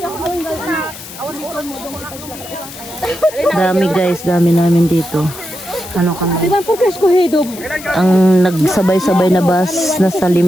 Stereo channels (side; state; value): left; noise; hiss, 15 dB below the sound